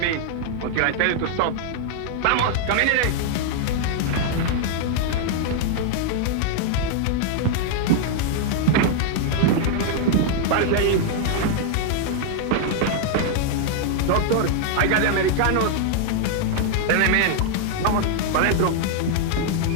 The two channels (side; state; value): both; different; correlation -0.01